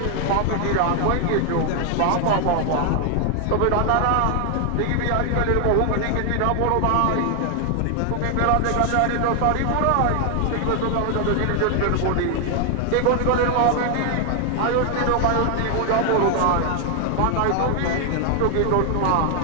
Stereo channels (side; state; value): both; different; correlation 0.00